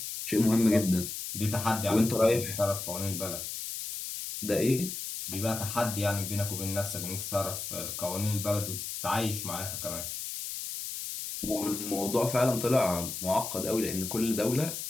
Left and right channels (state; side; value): noise; left; hiss, 6 dB below the sound